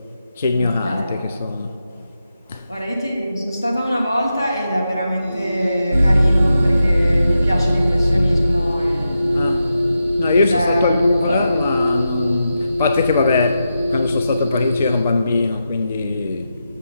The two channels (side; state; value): both; inverted; correlation -0.88